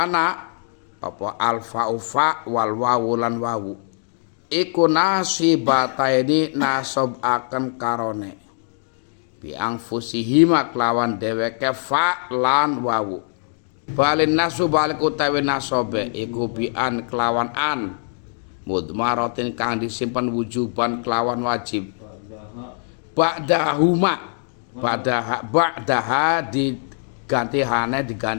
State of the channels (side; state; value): right; silent; 64 dB below the other